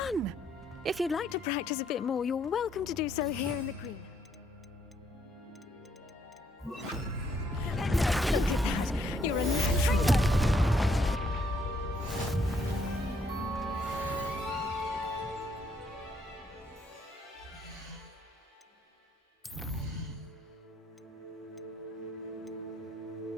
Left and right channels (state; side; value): normal; both; correlation 0.70